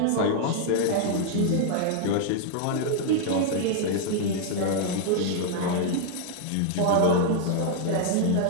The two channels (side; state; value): both; different; correlation 0.00